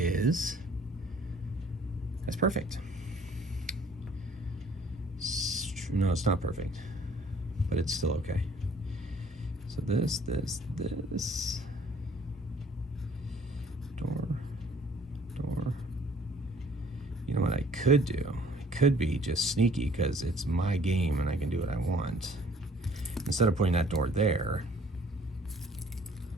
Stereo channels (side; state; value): both; normal; correlation 0.56